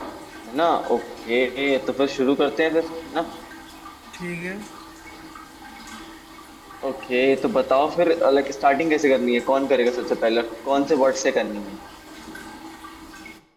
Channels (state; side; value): identical; both; correlation 1.00